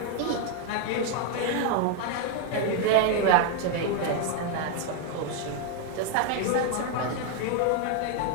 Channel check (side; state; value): both; different; correlation 0.01